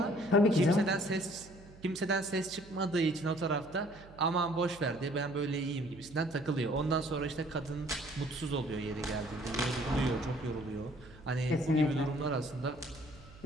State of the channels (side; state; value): right; noise; hum, 21 dB below the sound